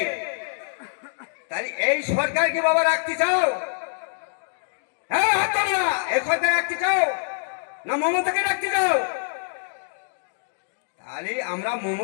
তাই এই সরকারকে বাবা রাখতে চাও? হ্যাঁ হাত না, এই সরকার রাখতে চাও না মমতাকে রাখতে চাও? তাহলে আমরা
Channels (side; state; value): right; silent; digital silence